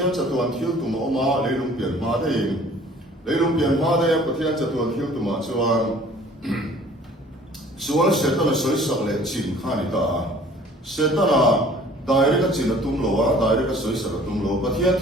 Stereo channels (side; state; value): both; normal; correlation 0.52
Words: cha tu an thil tu ma ma leilung pian ma de pathian cha tu an thil tu ma chuan sual se ta na soi sak le chin kha ni ta se ta na dai ka chin tum lo wa dai ka soi sak tum lo pathian